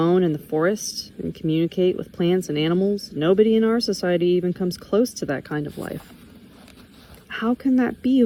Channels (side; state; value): both; identical; correlation 1.00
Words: in the forest and communicate with plants and animals. Nobody in our society even comes close to that kind of life. How can that be,